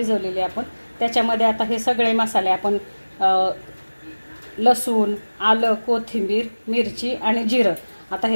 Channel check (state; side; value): inverted; both; correlation -1.00